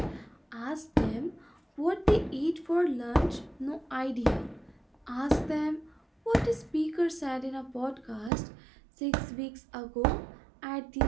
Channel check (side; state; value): left; drops out; at 8.3 s